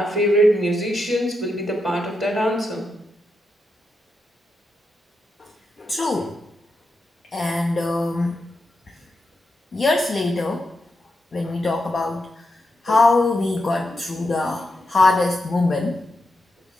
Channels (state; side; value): normal; both; correlation 0.85